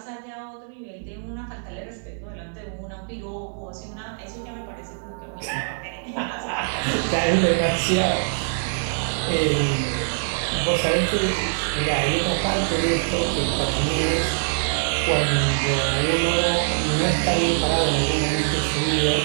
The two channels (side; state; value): left; silent; digital silence